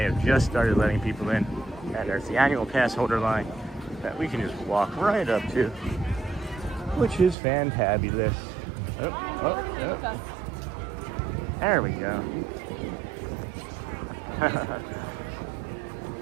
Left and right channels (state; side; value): drops out; left; at 7.4 s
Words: have just started letting people in. And there's the annual pass holder line that we can just walk right up to, which is fantabulous. Oh. There we go.